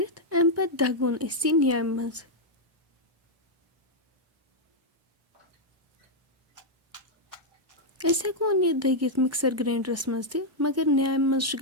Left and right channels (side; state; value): both; normal; correlation -0.03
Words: अम पत दगोन अस न्याम मज अस हेकोन यह दगित मिक्सर ग्राइंडरस मज त मगर न्याम मज